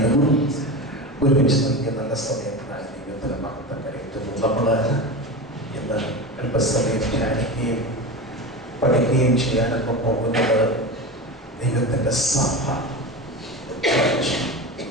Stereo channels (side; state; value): both; normal; correlation 0.25